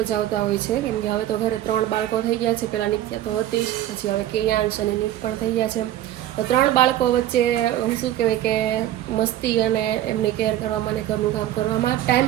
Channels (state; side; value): quieter; left; 13.0 dB